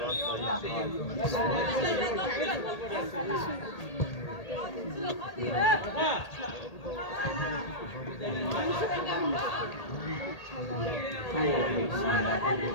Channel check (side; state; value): right; late; 1.8 ms